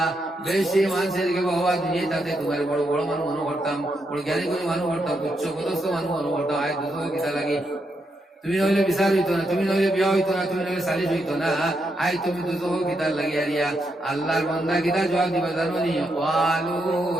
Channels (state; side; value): normal; both; correlation 0.81